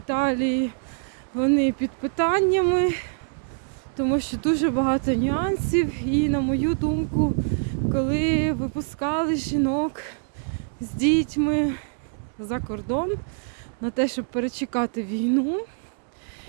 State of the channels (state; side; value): silent; left; 62 dB below the other